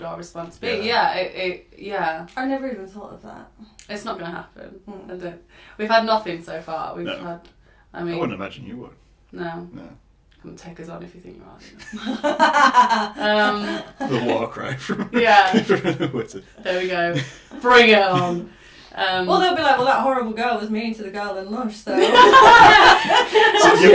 our response be? Yeah. I never even thought of that. It's not going to happen. We've had nothing so far. I wouldn't imagine you would. No. Come take us on if you think you are. The war cry from Wizard. There we go. Bring it on. Well, they'll be like, well, that horrible girl was mean to the girl in Lush, so... So you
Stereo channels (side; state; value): both; identical; correlation 1.00